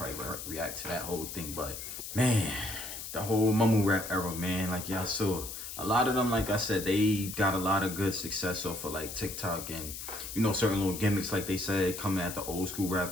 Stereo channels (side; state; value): left; noise; hiss, 8 dB below the sound